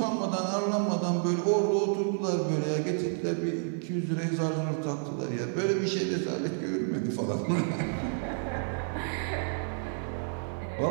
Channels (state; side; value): silent; left; 58 dB below the other